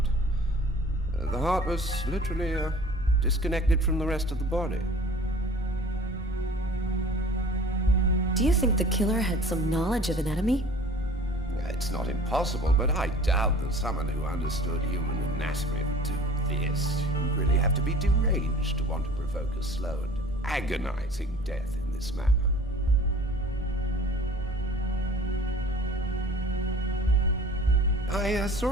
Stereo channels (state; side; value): normal; both; correlation 0.46